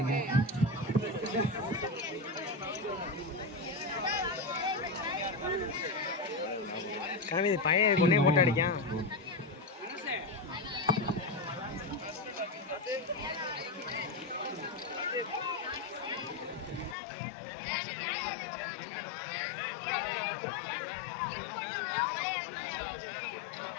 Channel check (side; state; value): right; drops out; at 16.9 s